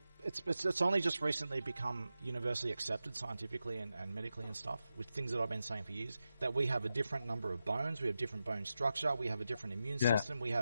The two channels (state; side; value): inverted; both; correlation -0.90